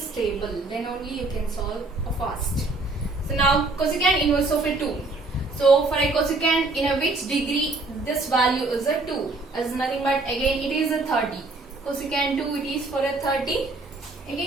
table, then only you can solve fast. So now cosecant inverse of a 2. So for a cosecant in a which degree this value is a 2, as nothing but again it is a 30. Cosecant 2, it is for a 30.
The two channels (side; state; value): left; quieter; 3.3 dB